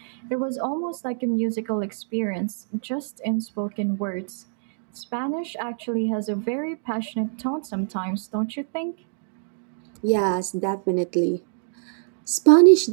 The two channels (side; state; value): left; silent; digital silence